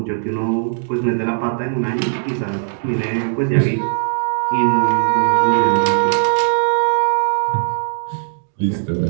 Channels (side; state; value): left; silent; digital silence